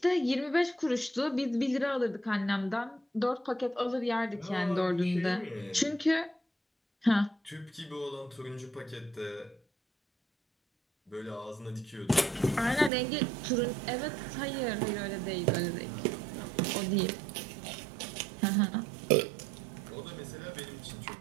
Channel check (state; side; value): drops out; left; at 12.9 s